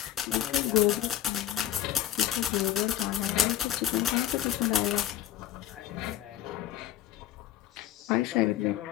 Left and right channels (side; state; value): right; quieter; 12.1 dB